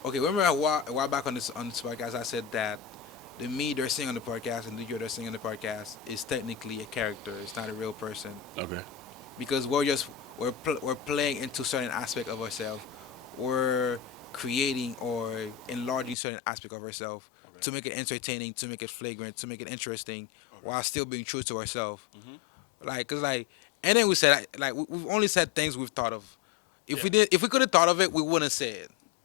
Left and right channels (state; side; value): drops out; right; at 16.2 s